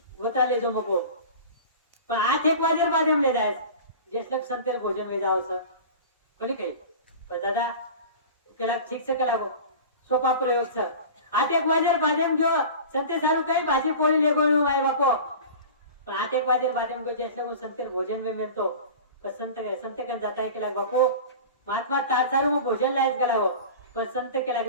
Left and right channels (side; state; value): both; inverted; correlation -0.36